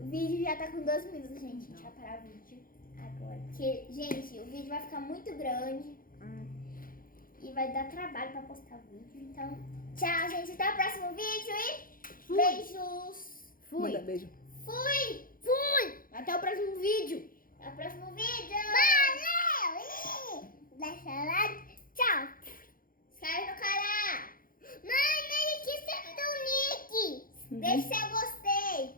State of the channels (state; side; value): late; right; 0.41 ms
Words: vídeo já tá com 2 minutos, gente. A gente vai parar o vídeo agora. Porque, gente, o vídeo vai ficar muito grande. E vai dar trabalho pra postar o vídeo. Então, tchau, gente. Até o próximo vídeo e beijos. Manda beijo. Fui! Até o próximo vídeo. Até o próximo vídeo. Valeu! Deixa lá. Tchau. Se inscreve no canal. Mãe, não esqueça do Nick. Deixa seu gostei,